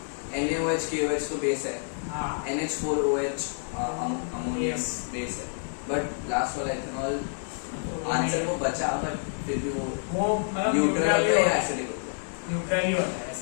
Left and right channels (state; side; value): silent; right; 59 dB below the other